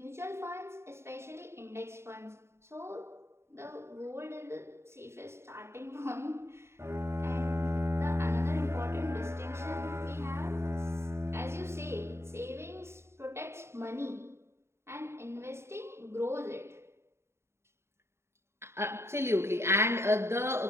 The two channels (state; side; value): late; left; 0.13 ms